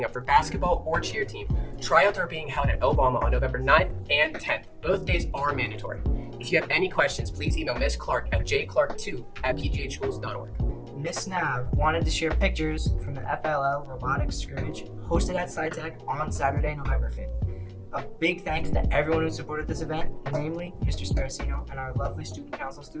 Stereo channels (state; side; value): identical; both; correlation 1.00